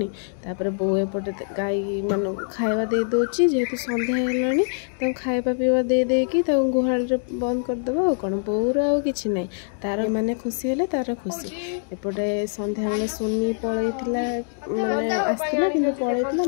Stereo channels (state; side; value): silent; right; digital silence